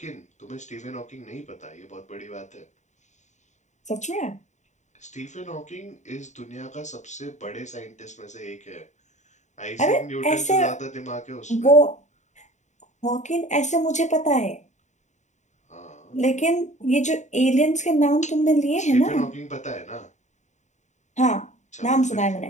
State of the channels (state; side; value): late; right; 0.34 ms